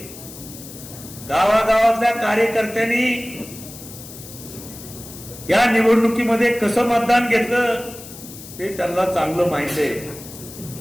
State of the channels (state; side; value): noise; left; hiss, 15 dB below the sound